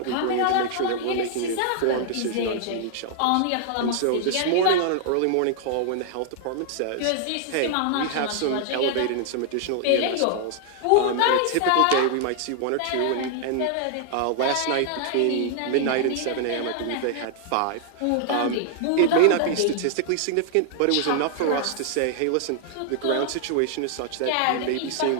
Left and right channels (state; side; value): different; both; correlation 0.00